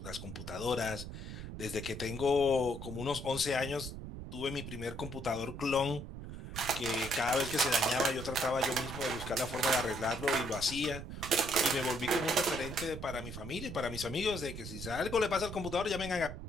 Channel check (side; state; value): right; noise; rumble, 9 dB below the sound